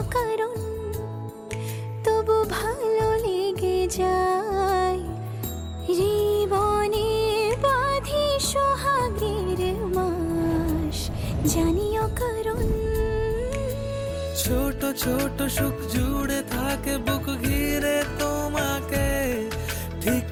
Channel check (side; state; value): both; identical; correlation 1.00